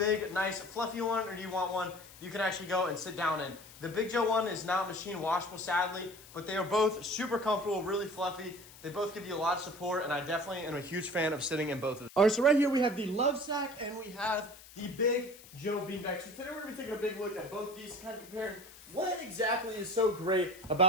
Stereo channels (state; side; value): noise; left; hiss, 20 dB below the sound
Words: nice, fluffy one, or do you want one you can actually go and sit down in? The Big Joe one is not machine washable, sadly, but they are both super comfortable, really fluffy. They both give you a lot of support, and I definitely am a huge fan of sitting in both of them. All right, so right here we have the Lovesac, and we have the Big Joe beanbag. So today we're going to be taking a big look at both these, kind of comparing what exactly is so great